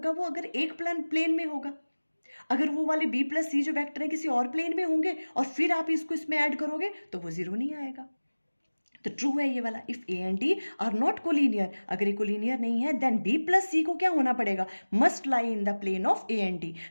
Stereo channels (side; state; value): both; inverted; correlation -1.00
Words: वो, अगर एक प्लेन में होगा। अगर वो वाले बी प्लस सी जो वेक्टर है किसी और प्लेन में होंगे और फिर आप इसको इसमें ऐड करोगे तो वो 0 नहीं आएगा। तो ट्रू है ये वाला, if a and d are not collinear, अगर ये कोलिनियर नहीं है देन बी प्लस सी को क्या होना पड़ेगा, must lie in the plane of A and D,